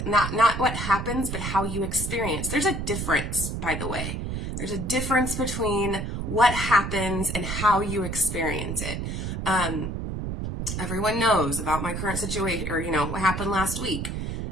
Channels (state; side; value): noise; right; rumble, 4 dB below the sound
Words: Not what happens, but how you experience. There's a difference, by the way. There's a difference between what happens and how you experience it. Everyone knows about my current situation, or what happened last week.